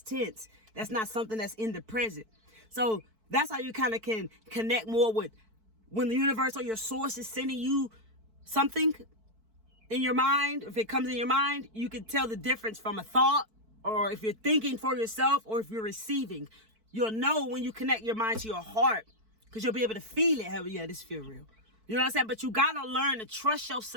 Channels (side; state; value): left; late; 4.5 ms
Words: tense. That's not something that's in the present. So that's how you kind of can connect more with when the universe or your source is sending you something in your mind. If it comes in your mind, you can tell the difference from a thought, or if you're thinking for yourself, or if you're receiving. You'll know when you connect your mind to your heart, because you'll be able to feel it. Hell yeah, this feel real. You know what I'm saying? But you got to learn to trust